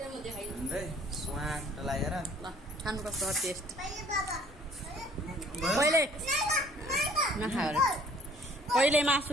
स्वाट लागेर खानुपर्छ टेस्ट। पहिले नखाएर पहिले मासु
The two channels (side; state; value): both; normal; correlation 0.56